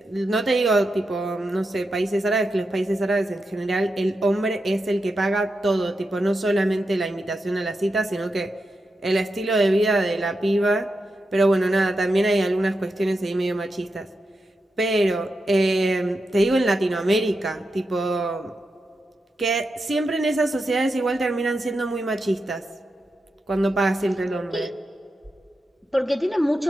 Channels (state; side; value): normal; both; correlation 0.88